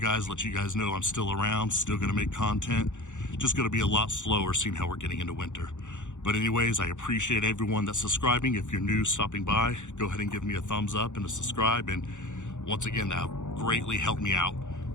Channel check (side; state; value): right; late; 0.85 ms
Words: let you guys know I'm still around, still gonna make content. Just gonna be a lot slower seeing how we're getting into winter. But anyways, I appreciate everyone that's subscribing. If you're new, stopping by, go ahead and give me a thumbs up and a subscribe. And once again, that greatly helped me out.